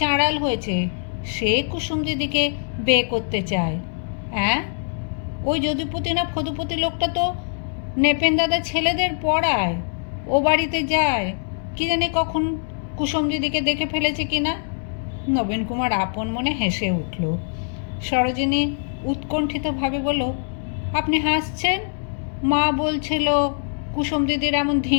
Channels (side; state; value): right; silent; digital silence